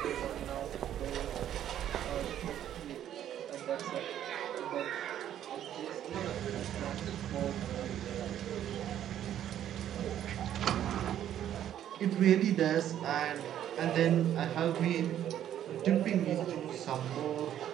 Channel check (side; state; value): left; quieter; 10.9 dB